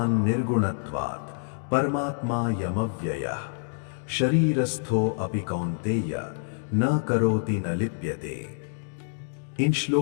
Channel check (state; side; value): silent; right; digital silence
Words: निर्गुणत्वात् परमात्मा यमव्ययः शरीरस्थो अपि कौन्तेय न करोति न लिप्यते। इन